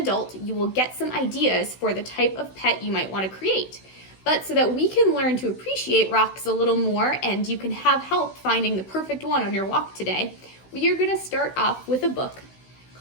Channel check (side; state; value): right; late; 16 ms